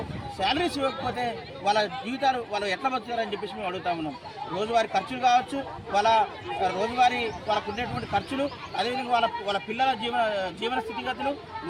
శాలరీస్ ఇవ్వకపోతే వాళ్ళ జీవితాలు వాళ్ళు ఎట్లా బతుకుతారని చెప్పేసి మేము అడుగుతా ఉన్నాం. రోజువారీ ఖర్చులు కావచ్చు, రోజువారీ వాళ్ళకు ఉండేటువంటి ఖర్చులు, అదేవిధంగా వాళ్ళ పిల్లల జీవన స్థితిగతులు,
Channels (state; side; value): identical; both; correlation 1.00